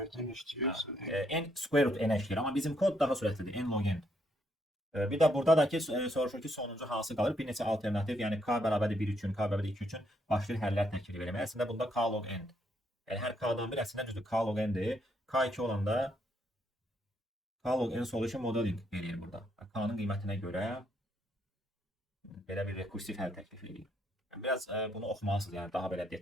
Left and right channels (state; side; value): normal; both; correlation 0.74